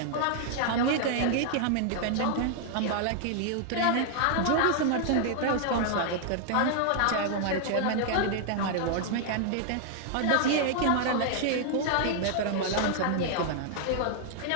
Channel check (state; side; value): different; both; correlation 0.00